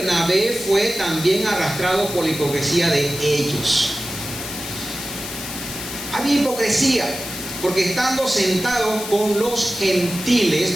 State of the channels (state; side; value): noise; left; hiss, 8 dB below the sound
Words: fue también arrastrado por la hipocresía de ellos. Había hipocresía, porque estando sentados con los gentiles,